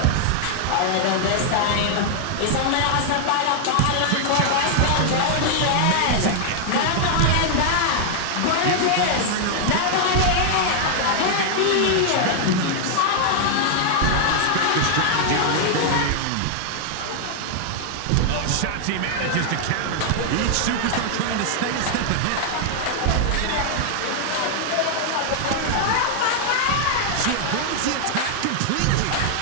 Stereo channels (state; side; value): different; both; correlation 0.00